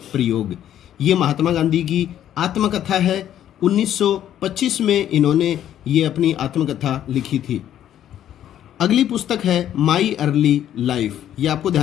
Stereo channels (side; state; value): right; quieter; 11.1 dB